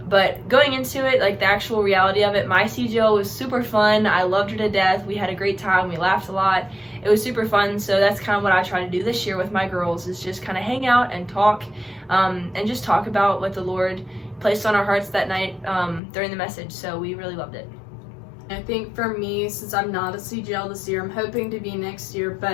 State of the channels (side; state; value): right; drops out; at 16.0 s